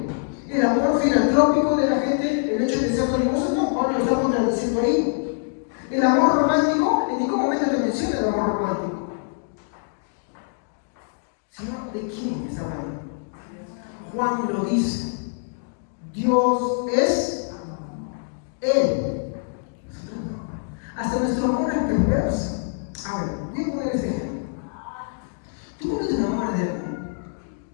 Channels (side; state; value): right; silent; digital silence